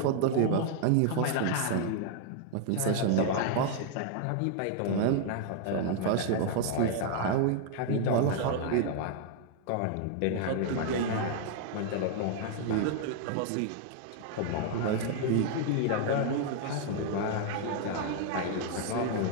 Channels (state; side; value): different; both; correlation 0.00